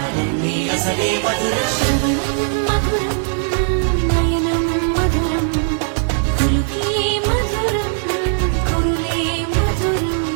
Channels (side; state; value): left; silent; digital silence